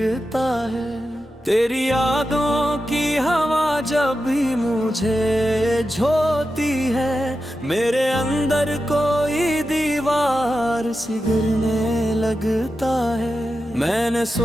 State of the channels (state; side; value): normal; both; correlation 0.91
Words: है। तेरी यादों की हवा जब भी मुझे झोती है, मेरे अंदर कोई दीवार सी गिरने लगता है। मैंने